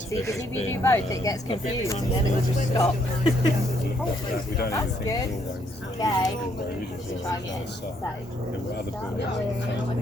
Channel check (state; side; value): normal; both; correlation 0.71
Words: of it has been. It gets confused and then it will just stop. We don't even think Okay. there were other buildings.